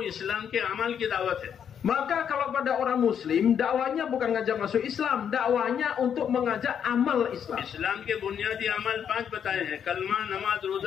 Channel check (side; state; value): right; quieter; 8.2 dB